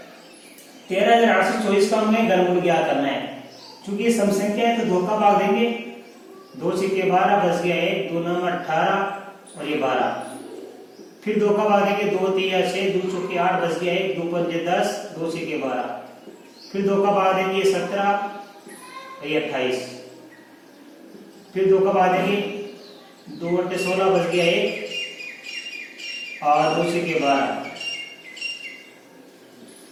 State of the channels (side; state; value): both; identical; correlation 1.00